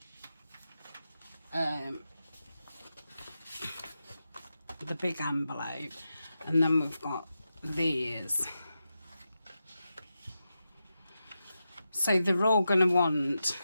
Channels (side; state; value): both; inverted; correlation -0.89